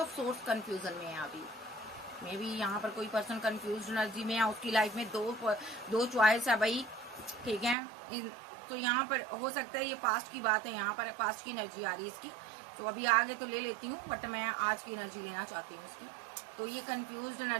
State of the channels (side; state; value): left; drops out; at 7.8 s